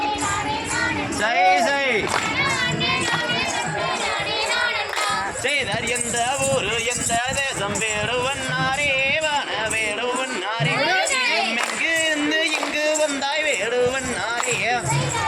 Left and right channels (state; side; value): identical; both; correlation 1.00